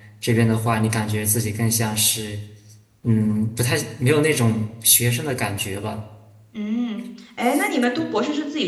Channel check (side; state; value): both; identical; correlation 1.00